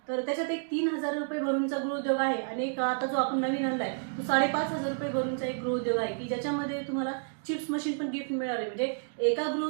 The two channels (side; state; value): left; silent; digital silence